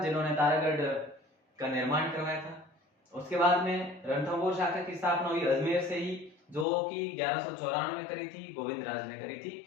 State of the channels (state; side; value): drops out; right; at 6.7 s